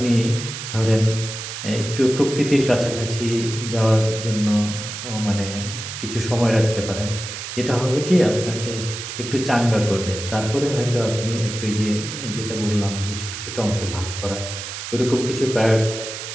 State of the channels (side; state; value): right; noise; hiss, 8 dB below the sound